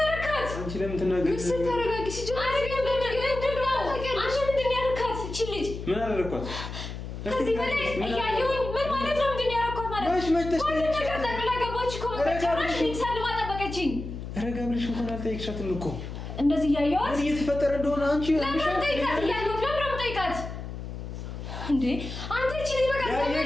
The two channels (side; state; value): left; noise; hum, 8 dB below the sound